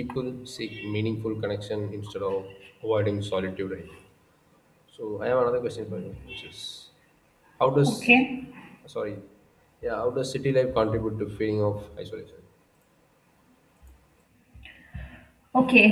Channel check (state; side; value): identical; both; correlation 1.00